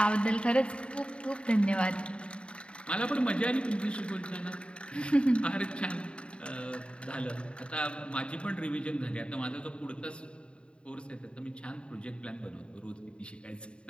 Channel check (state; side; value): late; right; 0.055 ms